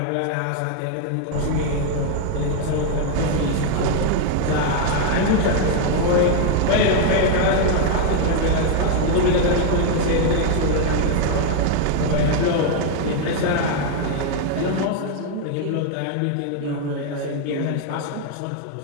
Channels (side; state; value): both; different; correlation 0.00